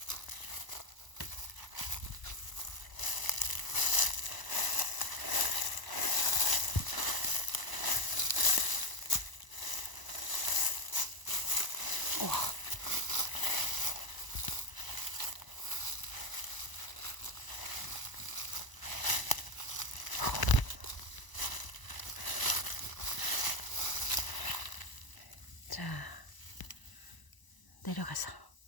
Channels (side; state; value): right; late; 1.0 ms